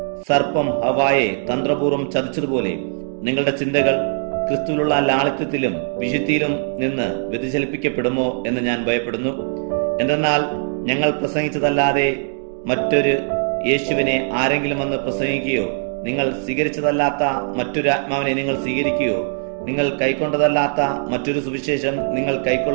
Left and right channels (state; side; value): silent; left; digital silence